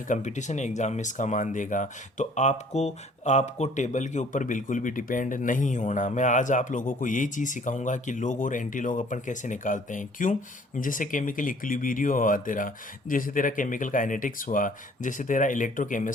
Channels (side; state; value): both; normal; correlation 0.56